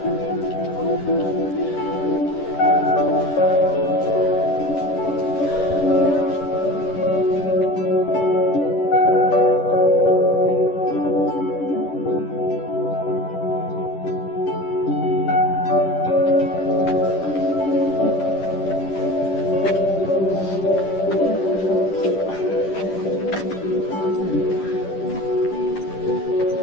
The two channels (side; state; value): right; late; 10 ms